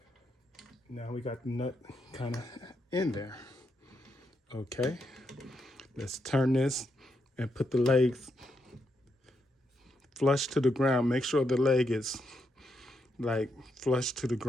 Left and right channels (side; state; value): both; normal; correlation 0.81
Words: Now we got the nut kind of in there. Okay, let's turn this and put the legs flush to the ground. Make sure the leg is like flush to the